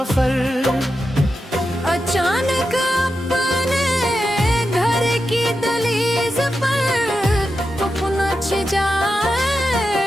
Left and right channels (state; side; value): normal; both; correlation 0.89